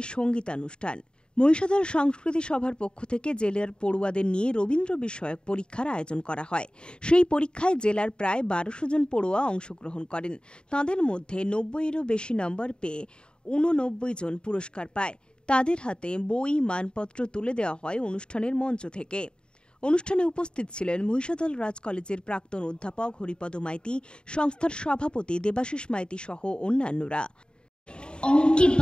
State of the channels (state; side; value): late; right; 0.050 ms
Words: সঙ্গীতানুষ্ঠান। মহিষাদল সংস্কৃতি সভার পক্ষ থেকে জেলার পড়ুয়াদের নিয়ে রবীন্দ্র বিষয়ক পরীক্ষার আয়োজন করা হয়। সেই পরীক্ষায় জেলার প্রায় ১২০০ জন পড়ুয়া অংশগ্রহণ করেন। তাঁদের মধ্যে ৯০-এরও বেশি নম্বর পেয়ে ৮৯ জন পুরস্কার পায়। তাদের হাতে বই, মানপত্র তুলে দেওয়া হয় অনুষ্ঠানের মঞ্চ থেকে। অনুষ্ঠানে উপস্থিত ছিলেন মহিষাদল রাজ কলেজের প্রাক্তন অধ্যাপক হরিপদ মাইতি, সংস্থার সভাপতি দেবাশিস মাইতি সহ অন্যান্যরা। অঙ্কে